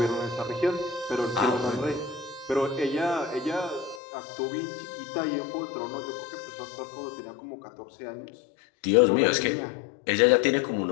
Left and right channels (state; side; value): drops out; right; at 4.0 s